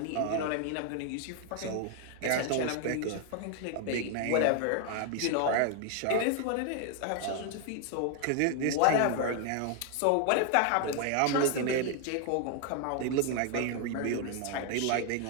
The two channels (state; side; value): different; both; correlation 0.00